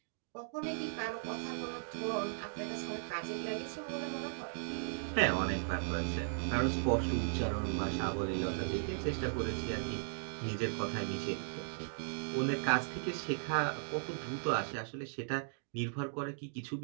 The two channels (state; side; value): silent; left; digital silence